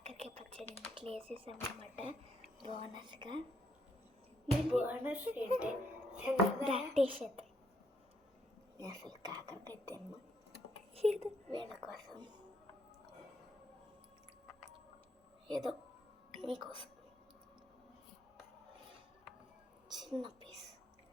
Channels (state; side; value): normal; both; correlation 0.73